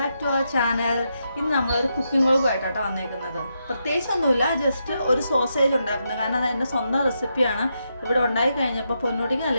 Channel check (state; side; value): inverted; both; correlation -0.83